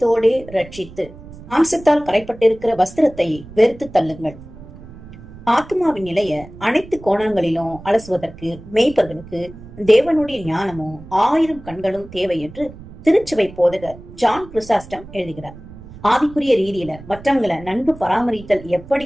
ரட்சித்து மாம்சத்தால் கரைப்பட்டிருக்கிற வஸ்திரத்தை வெறுத்து தள்ளுங்கள். ஆத்மாவின் நிலைய அனைத்து கோணங்களிலும் அலசுவதற்கு மேய்ப்பர்களுக்கு தேவனுடைய ஞானமும் 1000 கண்களும் தேவை என்று திருச்சபை போதகர் ஜான் கிறிஸ்டாஸ்டம் எழுதுகிறார். ஆவிக்குரிய ரீதியில மற்றவங்களை நன்கு பராமரித்தல்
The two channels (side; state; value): right; noise; rumble, 17 dB below the sound